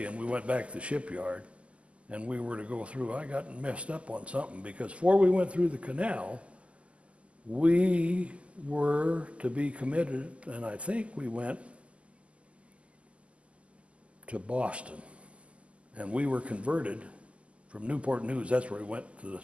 and we went back to the shipyard, and we were to go through. I got messed up on something, because before we went through the canal, we were to be committed, and I think we went to Boston, and we were converted from Newport News. That's where we went to the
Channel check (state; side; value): late; left; 0.059 ms